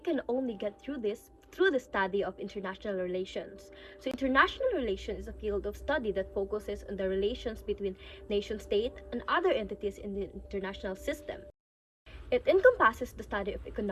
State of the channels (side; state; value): both; identical; correlation 1.00